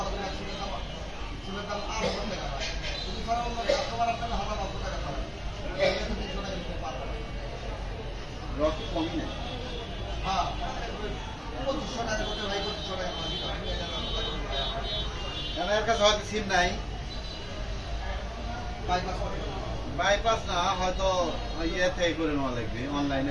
রক্ত কমই নেই এর কাছে হয়তো সিম নাই বাইপাস না হয়তো ইয়ে থেকে করে নেওয়া লাগবে অনলাইনে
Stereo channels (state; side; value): identical; both; correlation 1.00